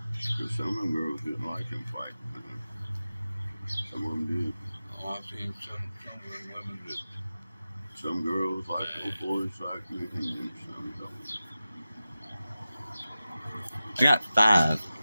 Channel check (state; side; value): inverted; both; correlation -0.95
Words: Because some of them girls didn't like him fighting. Some of them did. Oh, I've seen some of them women that. Some girls like those boys like me, and some don't. I got 5,